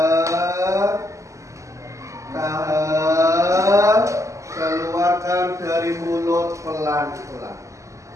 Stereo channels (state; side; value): late; left; 0.15 ms